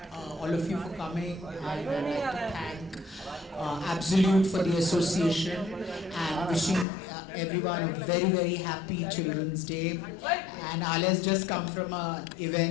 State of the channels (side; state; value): right; drops out; at 6.9 s